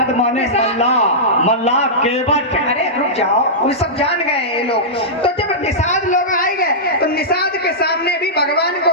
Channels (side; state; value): both; normal; correlation -0.13